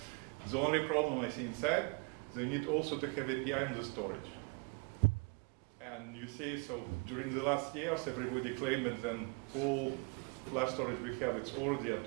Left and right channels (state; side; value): quieter; left; 31.5 dB